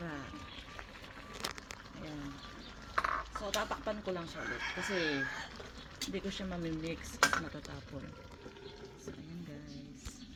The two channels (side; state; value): both; identical; correlation 1.00